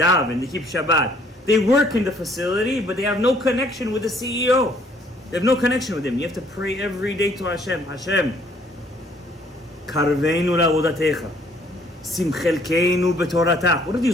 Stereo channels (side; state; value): both; normal; correlation 0.62